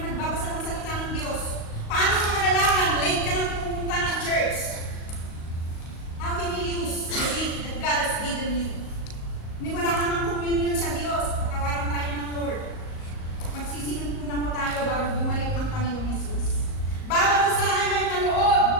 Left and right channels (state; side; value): late; right; 38 ms